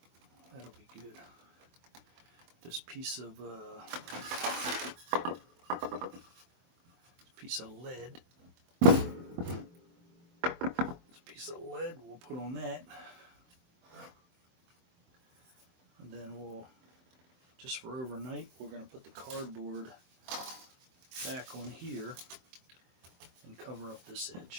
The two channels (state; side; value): late; left; 23 ms